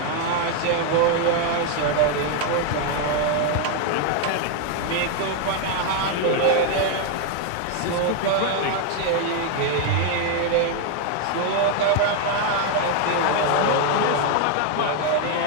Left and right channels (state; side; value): different; both; correlation 0.01